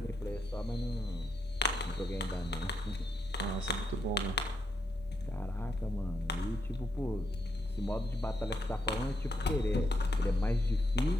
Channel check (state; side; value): normal; both; correlation 0.79